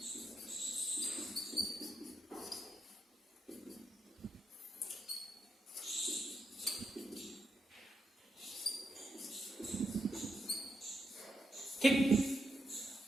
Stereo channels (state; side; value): normal; both; correlation 0.83